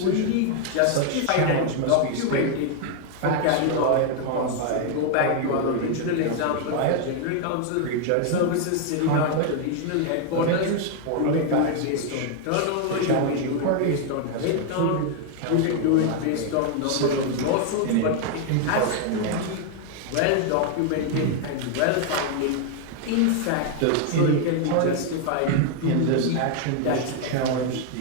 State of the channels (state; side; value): different; both; correlation 0.00